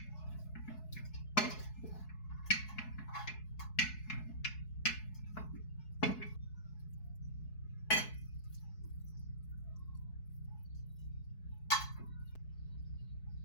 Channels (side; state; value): right; late; 4.7 ms